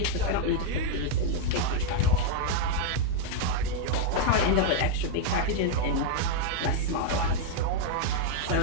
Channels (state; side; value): different; both; correlation 0.00